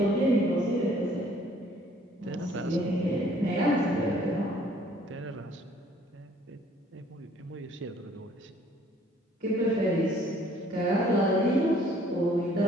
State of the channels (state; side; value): normal; both; correlation 0.59